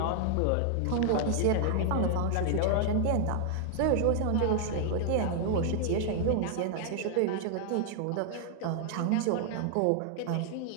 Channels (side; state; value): both; different; correlation 0.00